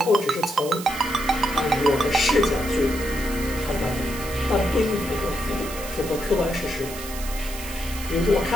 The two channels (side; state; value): right; noise; hiss, 11 dB below the sound